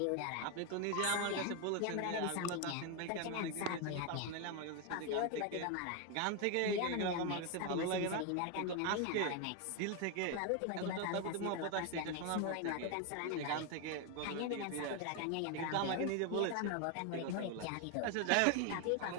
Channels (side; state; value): both; different; correlation 0.01